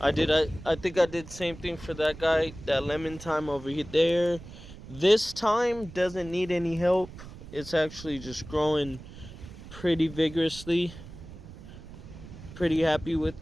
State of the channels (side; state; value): right; noise; rumble, 15 dB below the sound